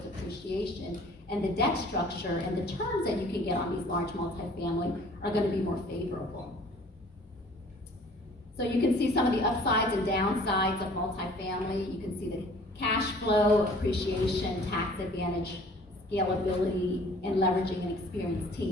appreciation, and the debt structure and the terms that you can get on these large multifamily are going to be more favorable. So you can see some of the upsides and downsides of multifamily. You can see the cash flow, appreciation, tax advantage, scalability, and leveraging an experienced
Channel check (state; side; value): normal; both; correlation 0.52